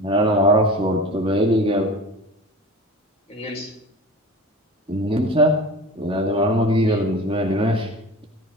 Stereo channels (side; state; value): both; normal; correlation 0.35